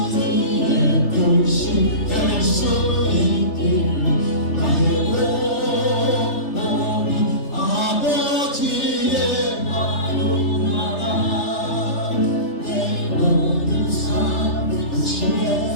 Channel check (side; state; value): right; late; 3.3 ms